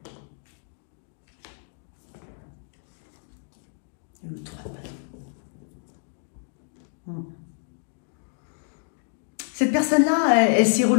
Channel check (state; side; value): silent; right; digital silence